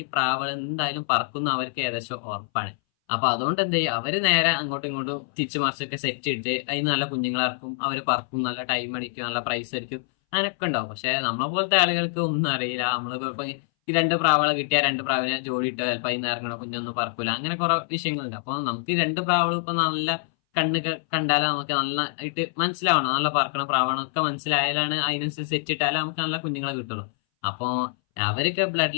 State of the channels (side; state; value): right; silent; 60 dB below the other